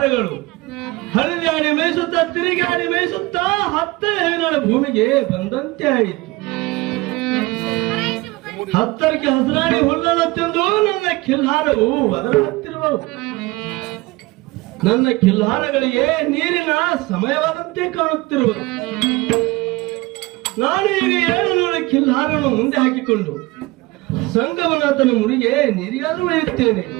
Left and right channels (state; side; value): quieter; left; 21.8 dB